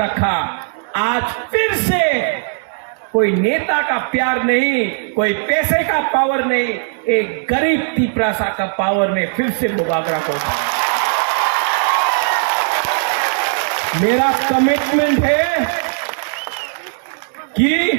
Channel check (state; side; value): silent; left; digital silence